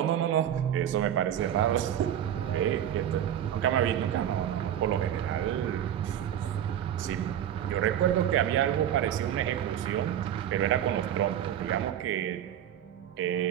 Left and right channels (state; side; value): quieter; left; 10.4 dB